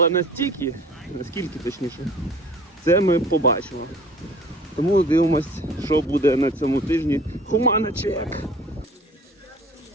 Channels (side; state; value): both; normal; correlation 0.47